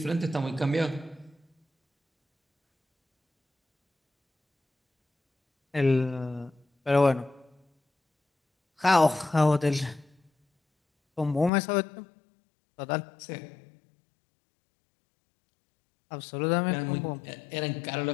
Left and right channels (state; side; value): drops out; right; at 11.5 s